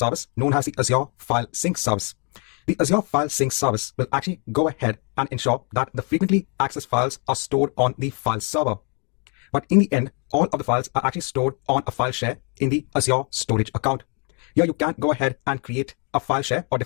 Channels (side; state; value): right; quieter; 37.3 dB